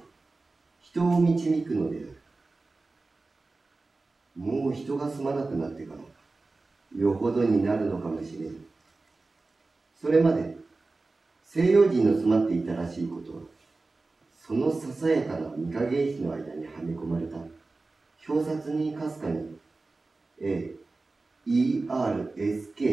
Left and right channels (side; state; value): left; quieter; 3.5 dB